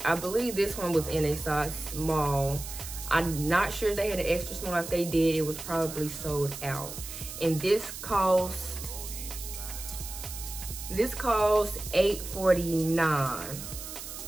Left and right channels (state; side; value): noise; right; hiss, 10 dB below the sound